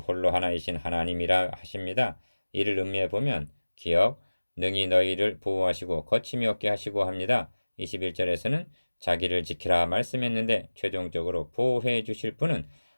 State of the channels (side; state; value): both; inverted; correlation -1.00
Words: 하나이신 하나님이라 하십니다. 이를 음미해 보면 기억 능히 너희를 보호하시고 거침이 없게 하시고 합니다. 21절에서는 자기를 지키라 말씀했는데 최종적으로 보호해 주실 분은